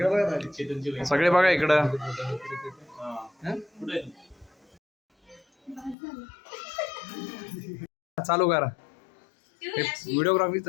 बघा दादा. सगळे बघा इकडं. चालू करा. व्हिडिओग्राफी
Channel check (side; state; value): right; drops out; at 6.0 s